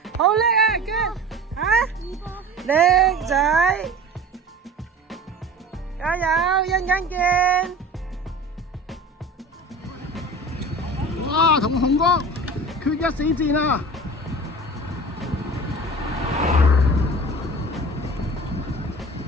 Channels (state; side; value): normal; both; correlation 0.37